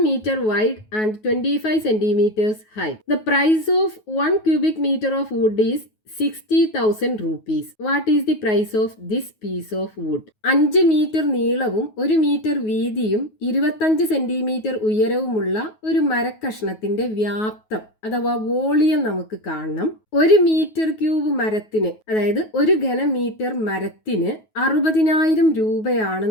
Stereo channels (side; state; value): right; late; 9.3 ms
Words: meter wide and 25 centimeters high. The price of 1 cubic meter of wood is 60,000 rupees. What is the price of this piece of wood? 5 metre നീളവും 1 മീറ്റർ വീതിയും 25 സെന്റിമീറ്റർ ഉയരവുമുള്ള ഒരു മരക്കഷ്ണത്തിന്റെ വ്യാപ്തം അഥവാ വോളിയം നമുക്ക് കാണണം. 1 മീറ്റർ ക്യൂബ് മരത്തിന്, അതായത് 1 ഘനമീറ്റർ മരത്തിന് 60,000